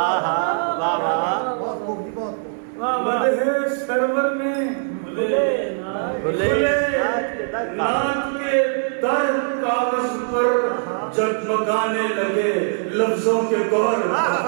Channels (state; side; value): silent; left; 62 dB below the other